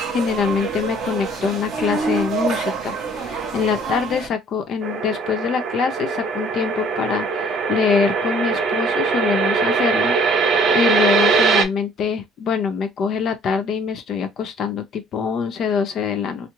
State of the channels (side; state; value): both; normal; correlation 0.56